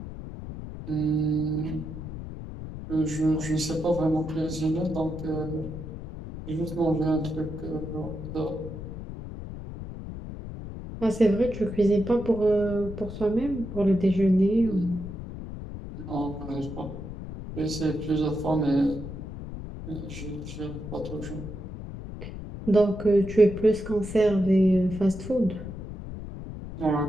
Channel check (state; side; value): noise; left; rumble, 10 dB below the sound